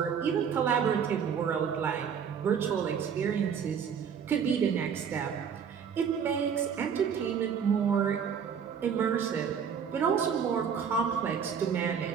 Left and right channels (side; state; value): left; quieter; 7.2 dB